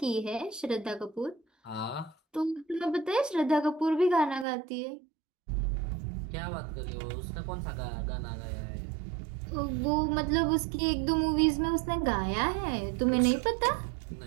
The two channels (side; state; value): left; drops out; at 4.5 s